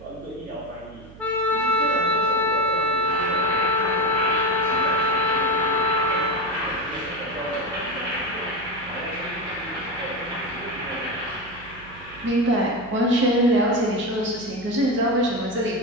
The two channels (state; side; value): noise; right; hum, 20 dB below the sound